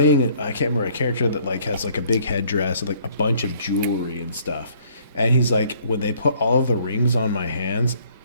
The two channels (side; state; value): both; inverted; correlation -0.61